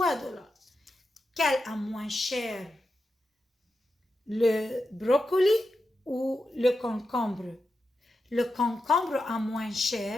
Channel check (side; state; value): both; normal; correlation 0.89